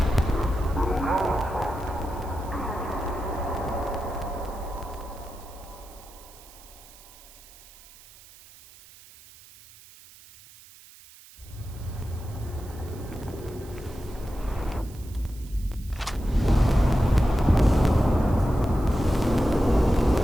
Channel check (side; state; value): right; noise; hiss, 22 dB below the sound